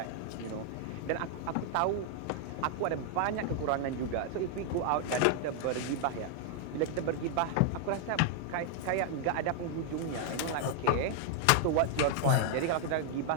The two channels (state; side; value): different; both; correlation 0.00